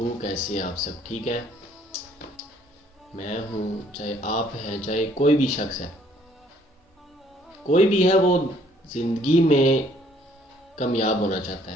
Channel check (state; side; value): normal; both; correlation 0.62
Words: کیسے ہیں آپ سب؟ ٹھیک ہے؟ میں ہوں، چاہے آپ ہیں چاہے کوئی بھی شخص ہے، کوئی بھی ہے وہ زندگی میں کامیاب ہونا چاہتا